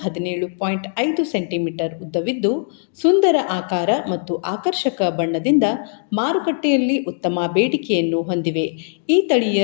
17.5 ಸೆಂಟಿಮೀಟರ್ ಉದ್ದವಿದ್ದು, ಸುಂದರ ಆಕಾರ ಮತ್ತು ಆಕರ್ಷಕ ಬಣ್ಣದಿಂದ ಮಾರುಕಟ್ಟೆಯಲ್ಲಿ ಉತ್ತಮ ಬೇಡಿಕೆಯನ್ನು ಹೊಂದಿವೆ. ಈ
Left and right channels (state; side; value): silent; right; digital silence